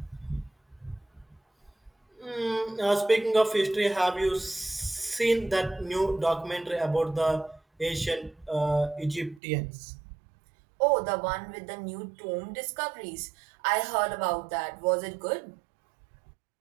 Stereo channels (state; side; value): drops out; left; at 9.4 s